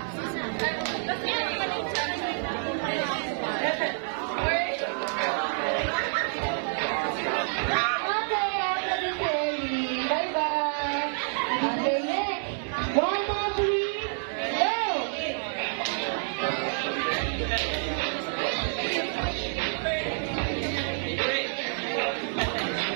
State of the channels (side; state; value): left; silent; 59 dB below the other